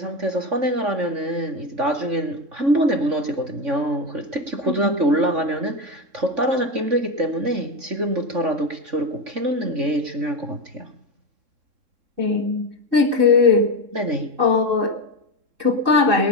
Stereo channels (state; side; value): late; left; 3.7 ms